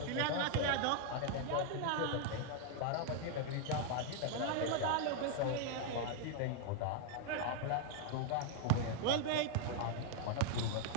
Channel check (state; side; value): different; both; correlation 0.00